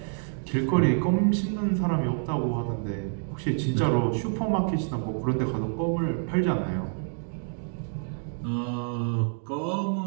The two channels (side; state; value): left; silent; digital silence